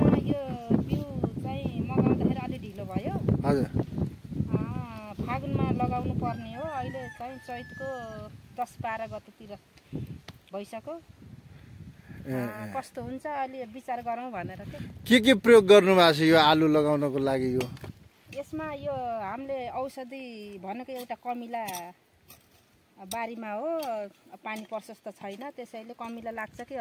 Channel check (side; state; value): both; identical; correlation 1.00